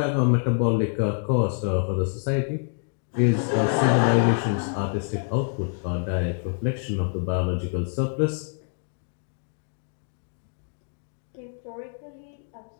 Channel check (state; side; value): silent; right; 61 dB below the other